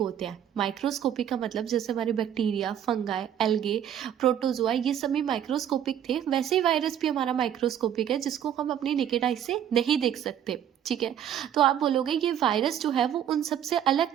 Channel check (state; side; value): quieter; left; 10.0 dB